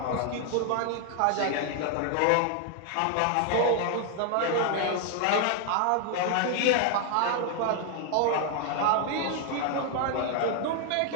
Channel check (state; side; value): different; both; correlation 0.00